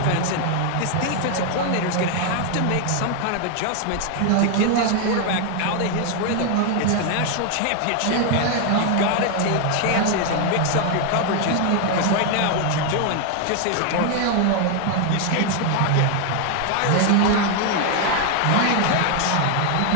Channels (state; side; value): different; both; correlation 0.00